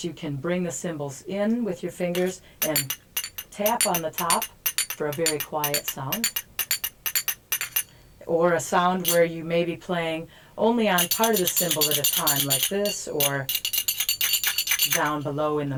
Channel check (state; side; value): identical; both; correlation 1.00